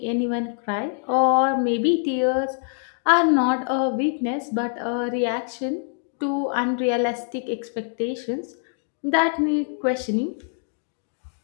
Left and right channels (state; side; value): silent; right; 62 dB below the other